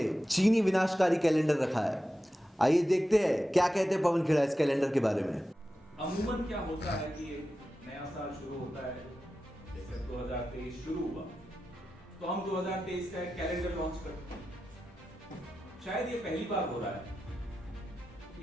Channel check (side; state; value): both; normal; correlation 0.92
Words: चीनी विनाशकारी कैलेंडर रखा है। आइए देखते हैं क्या कहते हैं पवन खेड़ा इस कैलेंडर के बारे में। अमूमन क्या होता है कि नया साल शुरू होता है, जैसे 2023 शुरू हुआ तो हम 2023 का एक कैलेंडर लॉन्च करते हैं। शायद ये पहली बार हो रहा है